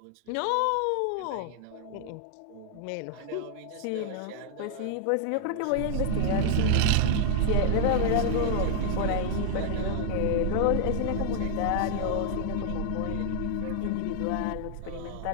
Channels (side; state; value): both; different; correlation 0.00